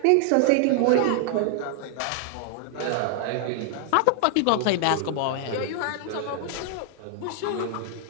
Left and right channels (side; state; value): both; different; correlation 0.00